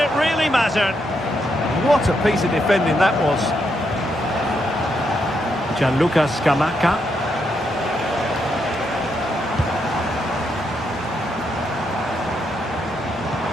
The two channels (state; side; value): normal; both; correlation 0.79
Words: really mattered. What a piece of defending that was. Gianluca Scamacca.